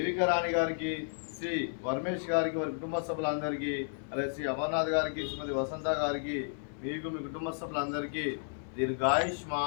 రాణి గారికి, శ్రీ వర్మేష్ గారికి, వారి కుటుంబ సభ్యులందరికీ, అలాగే శ్రీ అమర్నాథ్ గారికి, శ్రీమతి వసంత గారికి, మీకు మీ కుటుంబ సభ్యులందరికీ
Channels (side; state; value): right; silent; 55 dB below the other